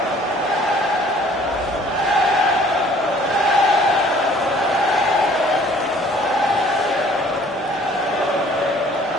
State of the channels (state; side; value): normal; both; correlation 0.55